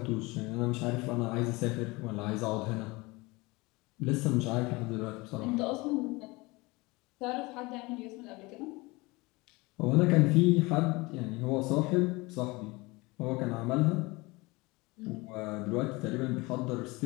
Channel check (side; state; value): right; quieter; 23.6 dB